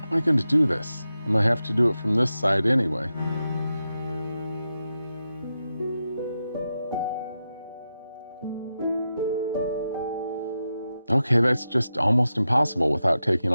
How am I going to do this? I'm going to have to do it from this side anyway. Okay, that's just almost impossible without taking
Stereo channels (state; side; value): inverted; both; correlation -0.89